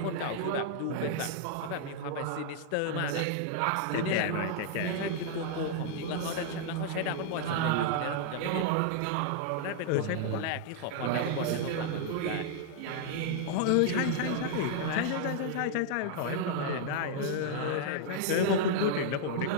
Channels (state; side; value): different; both; correlation -0.01